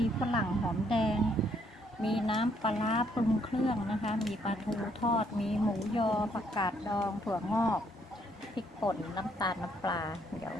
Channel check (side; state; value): both; normal; correlation 0.70